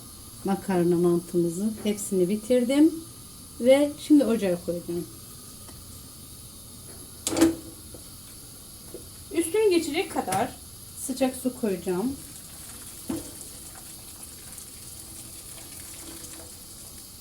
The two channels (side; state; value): right; noise; rumble, 25 dB below the sound